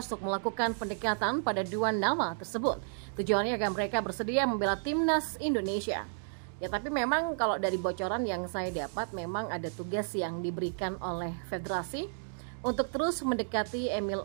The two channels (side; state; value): left; silent; digital silence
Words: untuk melakukan pendekatan pada dua nama tersebut. Tujuannya agar mereka bersedia membela timnas Indonesia. Tapi memang kalau dari bocoran yang saya dapat, memang ada tugas yang diberikan oleh federasi untuk terus mendekati Emil